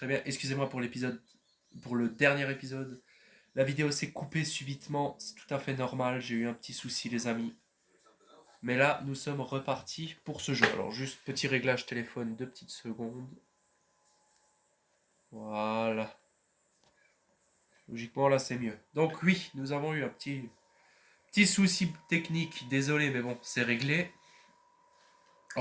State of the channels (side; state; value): both; identical; correlation 1.00